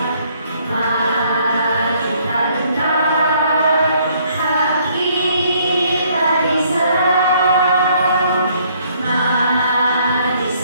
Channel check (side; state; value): both; inverted; correlation -0.65